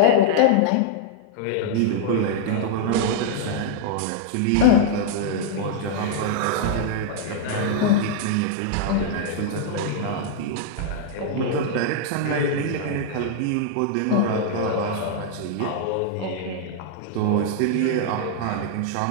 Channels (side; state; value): both; different; correlation -0.01